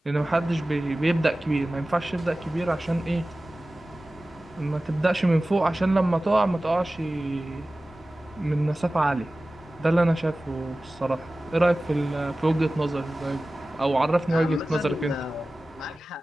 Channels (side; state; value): both; normal; correlation 0.97